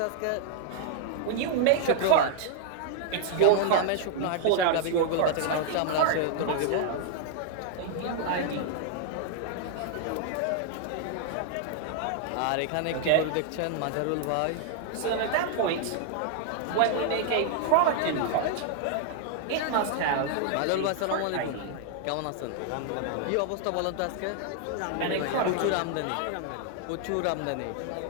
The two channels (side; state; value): both; different; correlation -0.01